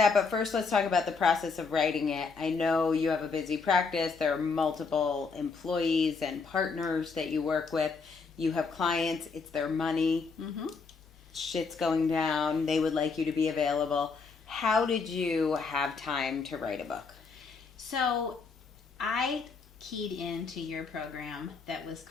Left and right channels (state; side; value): quieter; right; 4.8 dB